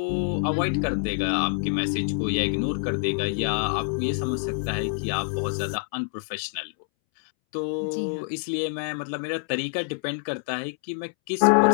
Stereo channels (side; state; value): right; silent; 61 dB below the other